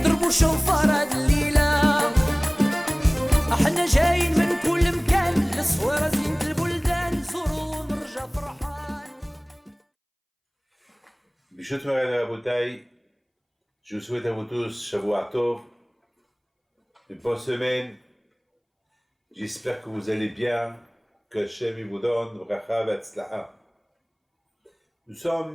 شوفار هاد الليلة. احنا جايين من كل مكان، الصويرة زينة البلدان، نزورو ونرجع فرحان. Bishut Moran Rabotai, je vous souhaite à vous tous Shavuot Tov, une bonne semaine. J'espère que vous allez bien, que Hashem vous donne bracha v'atzlaha. Nous sommes,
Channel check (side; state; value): both; identical; correlation 1.00